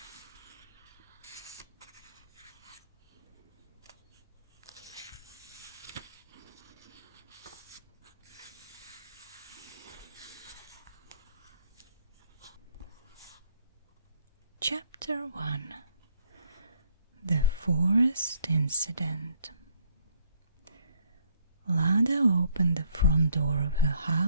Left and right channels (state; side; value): inverted; both; correlation -0.66